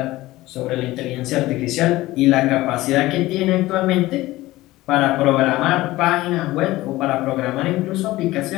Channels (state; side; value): quieter; right; 17.9 dB